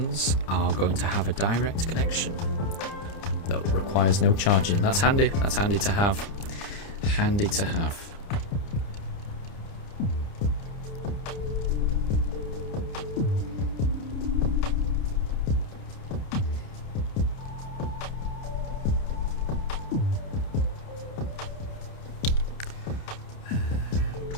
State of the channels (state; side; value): late; right; 30 ms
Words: are going to have a direct connection that requires no charging. That's handy to have. Handy to have.